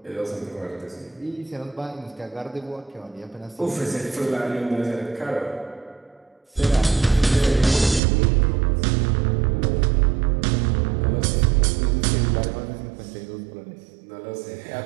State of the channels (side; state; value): left; drops out; at 8.0 s